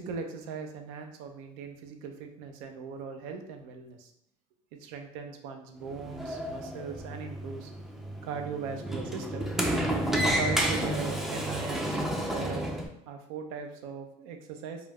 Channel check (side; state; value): both; normal; correlation 0.54